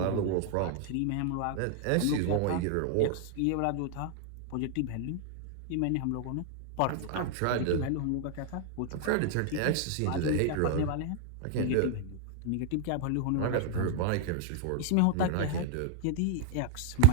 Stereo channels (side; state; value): both; different; correlation 0.00